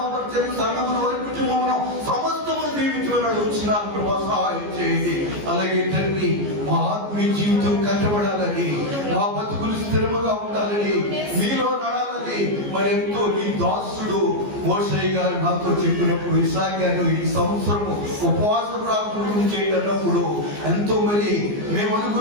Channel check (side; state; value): left; late; 14 ms